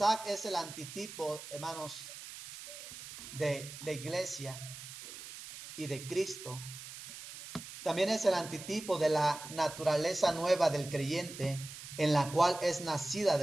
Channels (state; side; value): noise; right; hiss, 12 dB below the sound